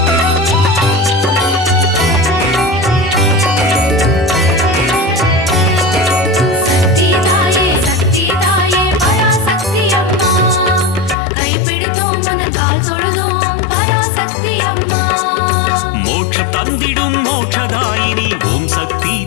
தந்திடும் மோட்சதாயினி ஓம் சக்தி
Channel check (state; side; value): drops out; right; at 11.2 s